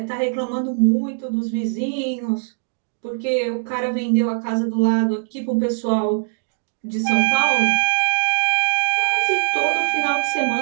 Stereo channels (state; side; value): silent; left; digital silence